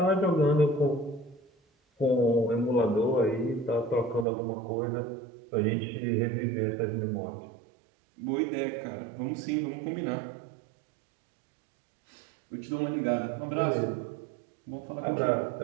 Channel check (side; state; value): left; drops out; at 4.2 s